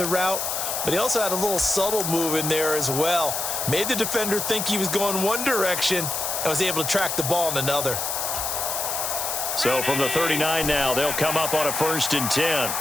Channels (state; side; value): noise; left; hiss, 2 dB below the sound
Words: route, but he also had a little subtle move in there as well. Made the defender think he was going one direction and was able to track the ball in another. So from the 39 now, they'll come up on a 1st and 10.